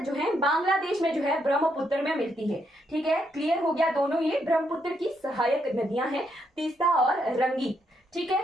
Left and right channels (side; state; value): both; normal; correlation 0.77